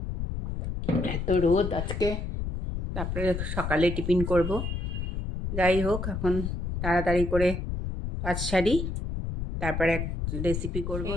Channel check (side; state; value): left; noise; rumble, 4 dB below the sound